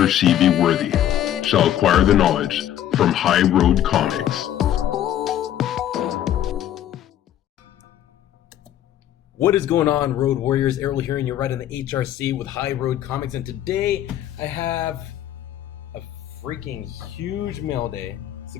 she be worthy, shall acquire the knowledge from High Road Comics. What is going on, Road Warriors? Errol here, and you're right in the HRC with High Road Comics. And today I have a freaking huge mail day, so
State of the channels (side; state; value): right; quieter; 11.5 dB